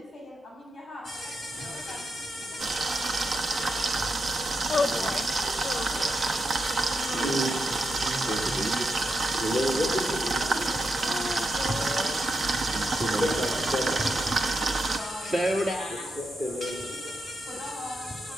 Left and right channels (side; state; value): both; normal; correlation 0.85